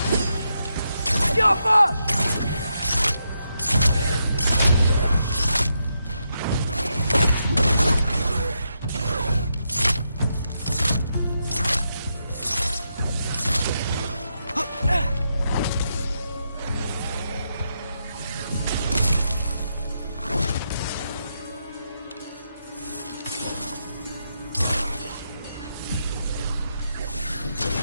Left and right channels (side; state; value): both; inverted; correlation -0.83